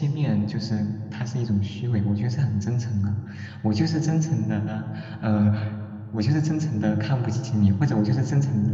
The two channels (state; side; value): identical; both; correlation 1.00